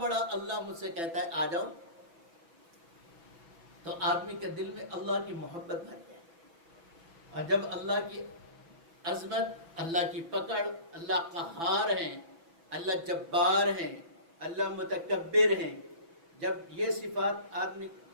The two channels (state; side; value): late; left; 6.0 ms